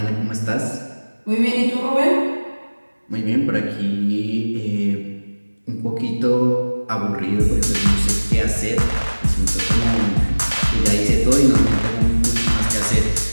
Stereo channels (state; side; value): inverted; both; correlation -1.00